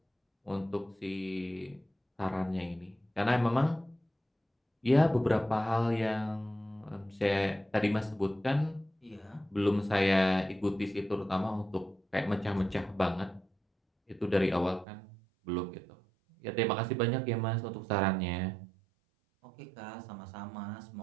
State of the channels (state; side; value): drops out; left; at 14.9 s